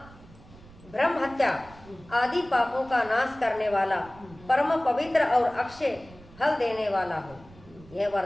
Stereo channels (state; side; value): noise; right; rumble, 22 dB below the sound